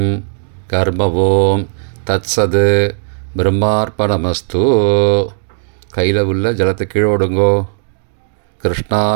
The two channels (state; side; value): silent; left; digital silence